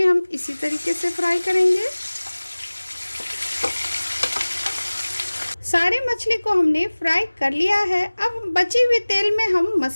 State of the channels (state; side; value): inverted; both; correlation -1.00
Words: हम इसी तरीके से फ्राई करेंगे। सारे मछली को हमने फ्राई कर लिया है। अब बची हुई तेल में हम